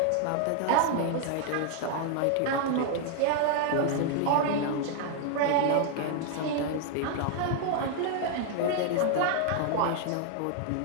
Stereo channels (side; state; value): both; different; correlation 0.00